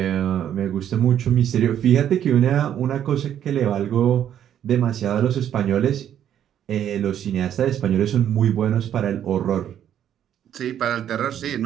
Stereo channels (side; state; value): left; quieter; 10.1 dB